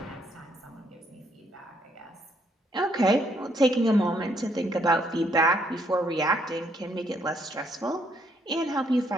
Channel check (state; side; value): normal; both; correlation 0.71